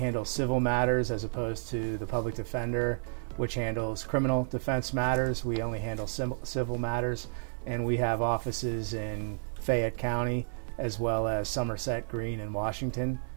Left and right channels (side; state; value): left; silent; 57 dB below the other